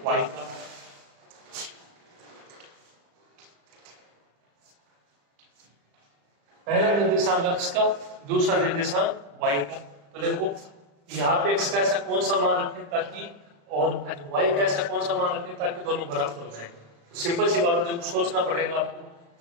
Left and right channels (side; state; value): left; late; 35 ms